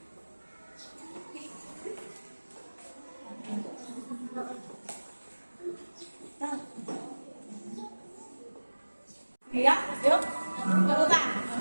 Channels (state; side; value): inverted; both; correlation -1.00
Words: Ya, yuk, urutan.